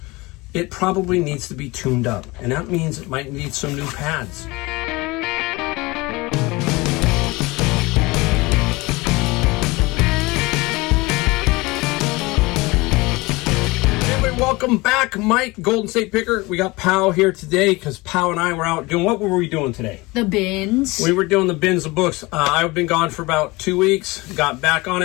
it probably needs to be tuned up. And that means it might need some new pads. Welcome back, Mike, Golden State Picker. We got Pow here today because Pow and I were out doing, what were we doing today? The bins. We were doing the bins of books. I've been gone for about 2 weeks. Got back on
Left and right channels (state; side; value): quieter; right; 23.1 dB